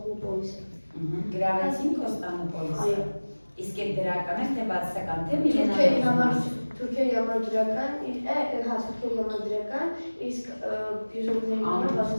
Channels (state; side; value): inverted; both; correlation -1.00